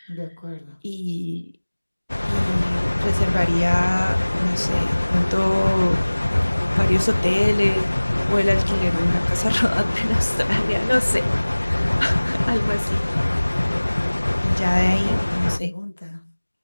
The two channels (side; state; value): both; inverted; correlation -1.00